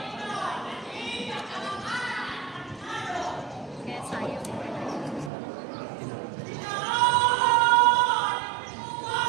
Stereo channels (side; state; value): left; drops out; at 5.3 s